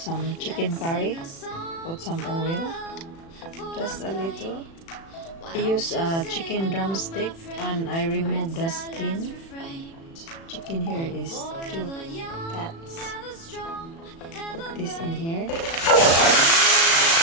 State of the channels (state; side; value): late; right; 36 ms